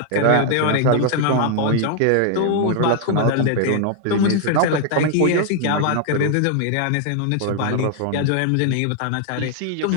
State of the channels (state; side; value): different; both; correlation 0.00